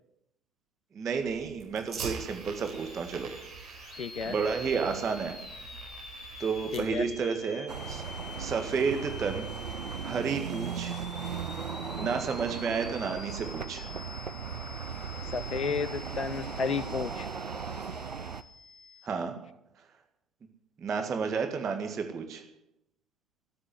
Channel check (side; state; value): left; quieter; 3.5 dB